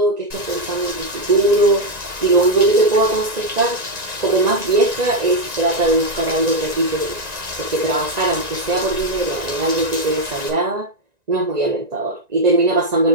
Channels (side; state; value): left; late; 1.9 ms